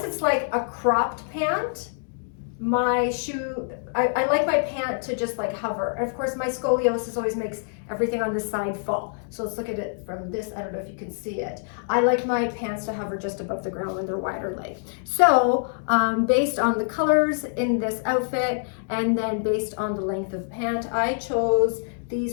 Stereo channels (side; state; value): right; silent; digital silence